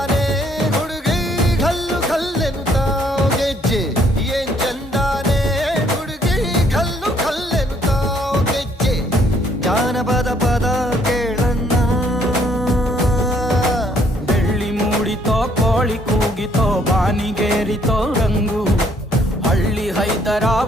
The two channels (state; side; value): normal; both; correlation 0.66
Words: ಹುಡುಗಿ ಘಲ್ಲು ಘಲ್ಲೆನು ತಾವು ಗೆಜ್ಜೆ ಏನ್ ಚಂದಾನೆ ಹುಡುಗಿ ಘಲ್ಲು ಘಲ್ಲೆನು ತಾವು ಗೆಜ್ಜೆ ಜಾನಪದ ಪದ ಕೇಳನ್ನ ಬೆಳ್ಳಿ ಮೂಡಿತೋ ಕೋಳಿ ಕೂಗಿತೋ ಬಾನಿಗೇರಿತೋ ರಂಗು ಹಳ್ಳಿ ಹೈದರ